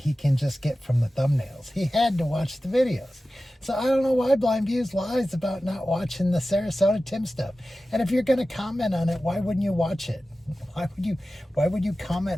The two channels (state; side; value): normal; both; correlation 0.95